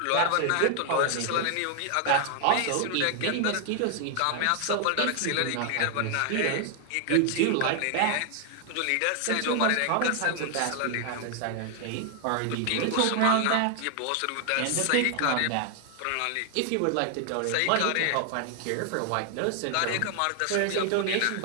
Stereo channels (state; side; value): different; both; correlation 0.00